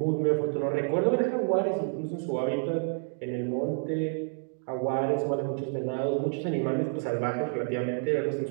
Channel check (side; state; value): left; silent; 59 dB below the other